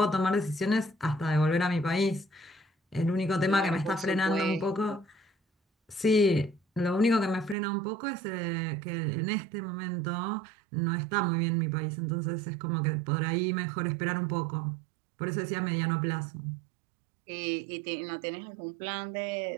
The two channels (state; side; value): drops out; left; at 7.6 s